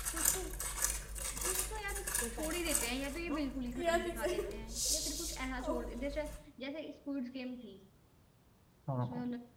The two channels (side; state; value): both; identical; correlation 1.00